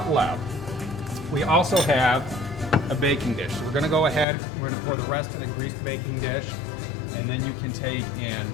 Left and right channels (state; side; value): drops out; right; at 4.2 s